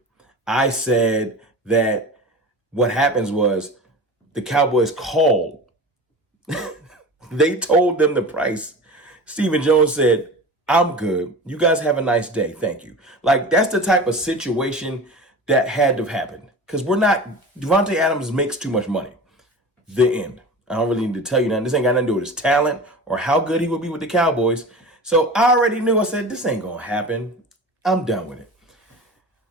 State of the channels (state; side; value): normal; both; correlation 0.34